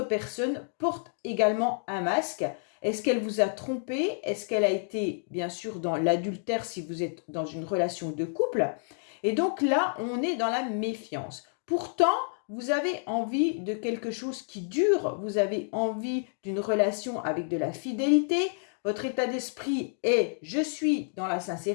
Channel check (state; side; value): silent; right; digital silence